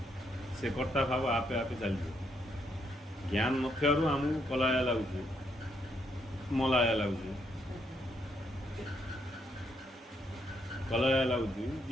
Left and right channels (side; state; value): both; normal; correlation 0.75